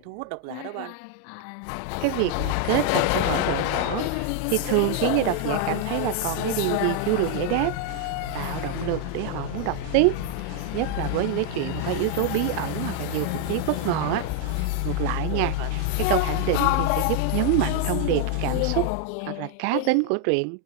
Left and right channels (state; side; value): different; both; correlation 0.00